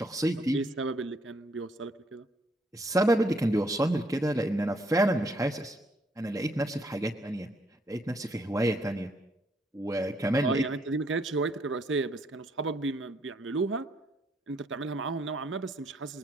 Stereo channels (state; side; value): normal; both; correlation 0.70